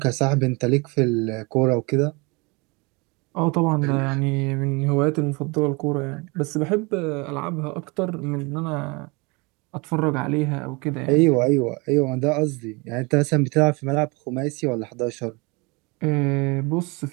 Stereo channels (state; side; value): quieter; left; 27.9 dB